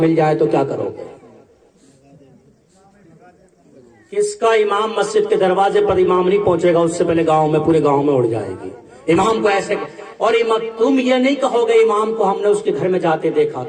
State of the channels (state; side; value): identical; both; correlation 1.00